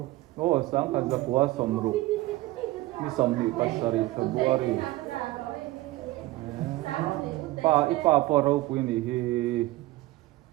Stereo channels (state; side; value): quieter; left; 18.5 dB